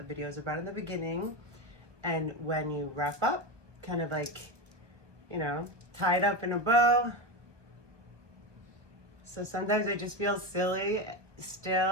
video is about in the beginning. And when you wrap up, kind of like, you know, tie it up in a bow. So sometimes I just feel silly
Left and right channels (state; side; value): late; left; 1.1 ms